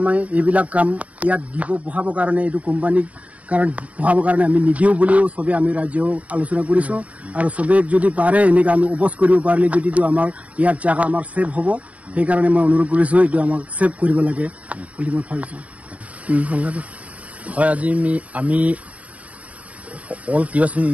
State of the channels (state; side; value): late; left; 0.068 ms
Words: এইবিলাক কাম ইয়াত দিব বহাবৰ কাৰণে এইটো কোম্পানীক কাৰণ বহাবৰ কাৰণে আমি নিদিওঁ বুলিও চবে আমি ৰাজ্য আলোচনা কৰিছো আৰু চবে যদি পাৰে এনেকৈ আমি অপোজ কৰিব পাৰিলে যদিতো আমাৰ ইয়াত জাগা আমাৰ ছেভ হ'ব সেইকাৰণে মই অনুৰোধ কৰিছো এইটো আমাক ছেভ কৰিব লাগে বুলি মই ভাবিছো হয় আজি আমি অল কিউএছএন